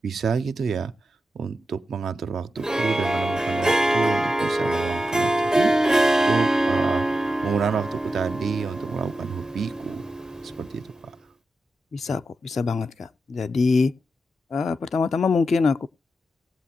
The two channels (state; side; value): normal; both; correlation 0.89